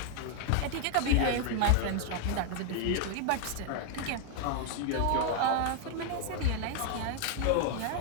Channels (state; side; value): different; both; correlation 0.00